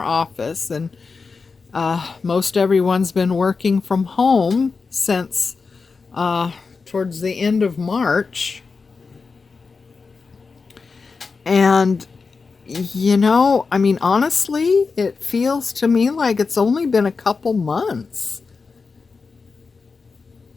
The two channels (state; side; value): quieter; right; 4.6 dB